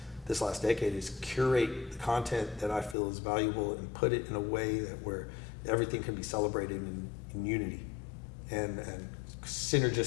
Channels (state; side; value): drops out; right; at 3.0 s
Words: decade, is curate the content that I feel is valuable and put it in a way where everything can be celebrated in unity and